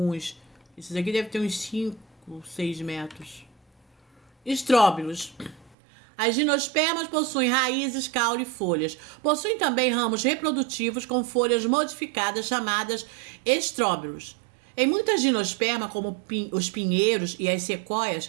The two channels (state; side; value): drops out; left; at 5.8 s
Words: Esses aqui devem ter uns 5, 6 metros. Estróbilos. As gimnospermas possuem raízes, caule e folhas. Possuem também ramos reprodutivos com folhas modificadas chamadas estróbilos. Em muitas gimnospermas, como os pinheiros e as